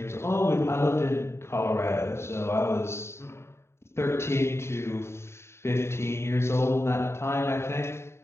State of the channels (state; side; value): late; right; 0.13 ms